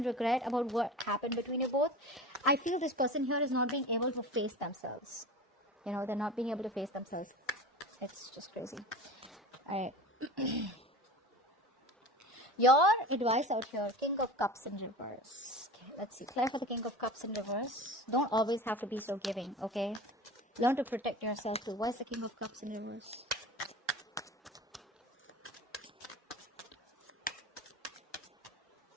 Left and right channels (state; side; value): normal; both; correlation 0.34